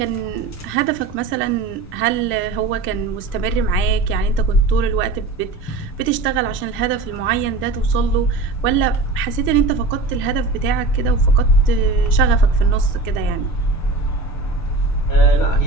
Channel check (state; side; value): quieter; left; 3.4 dB